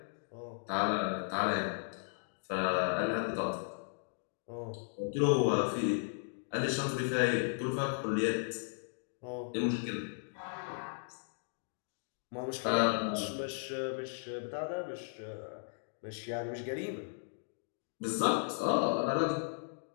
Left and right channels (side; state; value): right; silent; digital silence